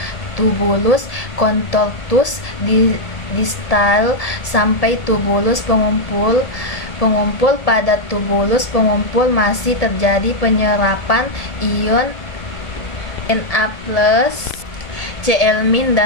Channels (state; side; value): late; right; 1.7 ms